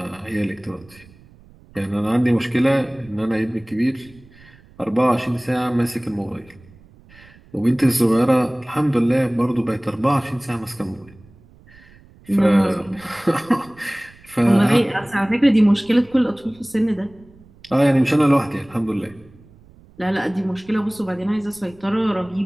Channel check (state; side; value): noise; right; rumble, 25 dB below the sound